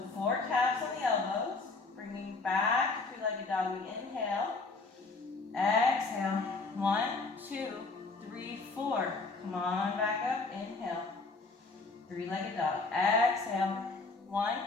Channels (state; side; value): quieter; right; 3.8 dB